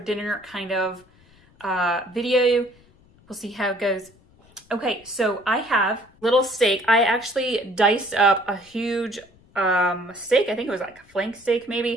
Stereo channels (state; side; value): noise; left; rumble, 29 dB below the sound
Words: kind of video. We'll see how it goes. Okay, so I have little steak. I actually diced up a huge steak. I think it was like a flank steak